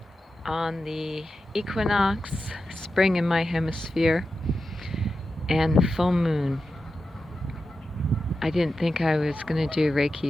on the Equinox, spring in my hemisphere, and full moon. I didn't think I was going to do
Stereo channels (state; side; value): normal; both; correlation 0.91